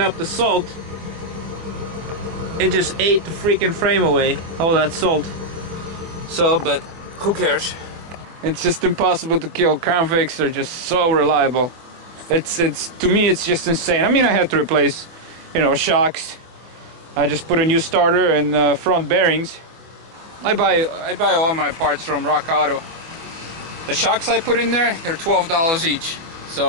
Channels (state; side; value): late; left; 24 ms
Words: the salt, it just ate the freaking frame away, all that salt. So, but who cares? It's just impossible to kill. Crown Vics are just so reliable. It's to me it's just insane. I mean, I had to replace, you know, shocks. I just put a new starter and front bearings. I buy all my parts from Rock Auto. The shocks I put in there, they're $12 each.